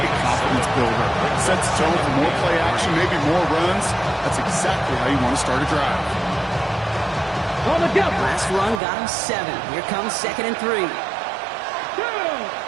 a confidence builder. Sets the tone for more play action, maybe more runs. That's exactly how you want to start a drive. On the go. Last run got him 7. Here comes 2nd and 3.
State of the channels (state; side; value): drops out; left; at 8.8 s